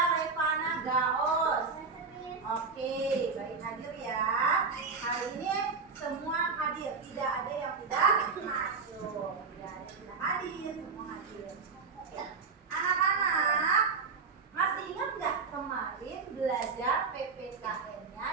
Revana Gaos. Oke, baik hadir ya. Hari ini semua hadir, tidak ada yang tidak masuk. Tidak ada yang tidak hadir, semua hadir. Oke. Anak-anak, masih ingat nggak kemarin belajar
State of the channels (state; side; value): quieter; left; 4.8 dB